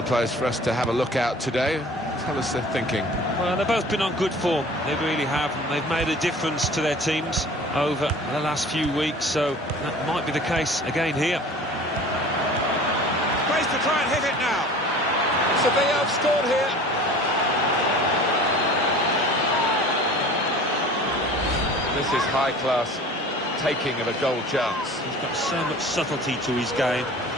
of players for us to have a look at today. Tell us their thinking. Well, they've both been on good form. They really have. And they've made a difference to their teams over the last few weeks, so that might be the case again here. Space to try and hit it now. Sevilla have scored here. This is high-class taking of a goal chance. He's got so much subtlety to his game.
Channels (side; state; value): both; normal; correlation 0.43